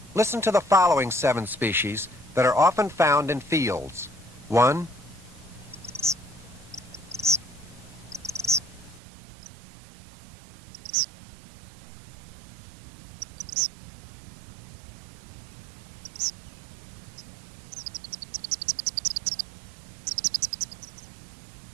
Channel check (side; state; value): left; drops out; at 9.0 s